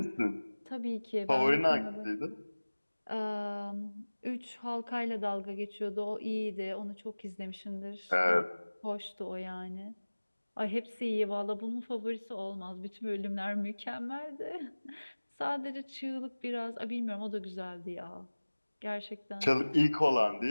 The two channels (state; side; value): inverted; both; correlation -1.00